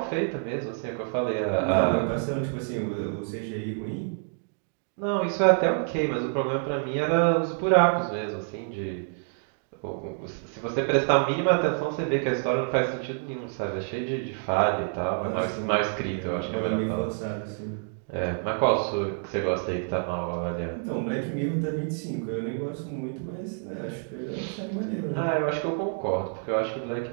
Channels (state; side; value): silent; left; 60 dB below the other